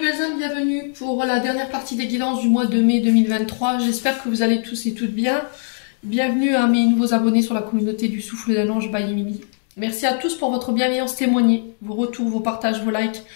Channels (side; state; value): right; silent; digital silence